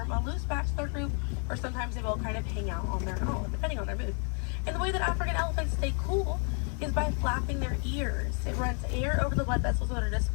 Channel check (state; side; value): quieter; right; 39.9 dB